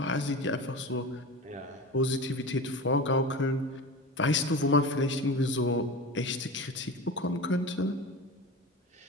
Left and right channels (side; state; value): both; normal; correlation 0.30